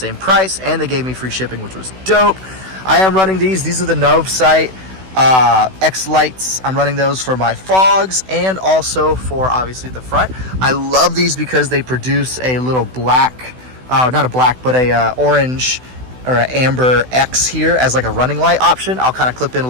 price, and they gave me free shipping, which was dope. I am running these. These are the Novesight X lights. I'm running those for my fogs and also for obviously the front. I love these because they produce a little black, not a black, but a orange or an amber X here as like a running light option. I'll kind of clip in a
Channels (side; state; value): left; late; 16 ms